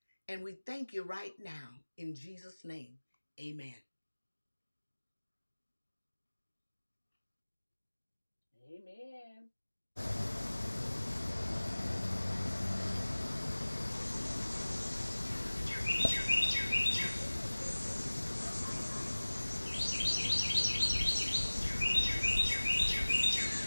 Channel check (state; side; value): inverted; both; correlation -1.00